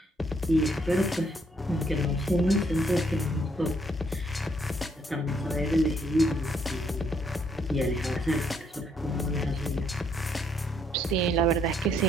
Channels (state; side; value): normal; both; correlation 0.70